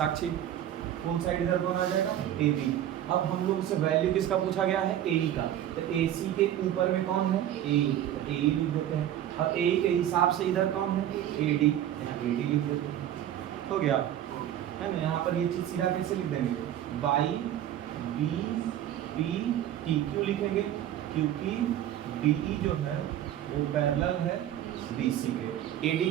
फुल साइड इधर कौन आ जाएगा AB। अब हम लोग से वैल्यू किसका पूछा गया है, AE का, तो AC के ऊपर में कौन है, AE, तो AE लिख देते हैं, और AE के हिसाब से इधर कौन है, AD, यहाँ AD लिख देते हैं, हो गया, है ना। यहाँ पर ये चीज़ सीधा कैसे लिख देंगे, बाई BPT, क्यों लिखेंगे, क्योंकि DE जो है वो पैरेलल है BC के। AD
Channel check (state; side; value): quieter; left; 11.5 dB